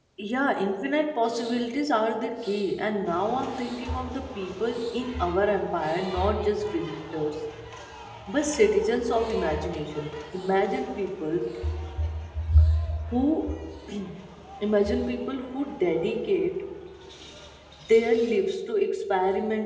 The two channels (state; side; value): identical; both; correlation 1.00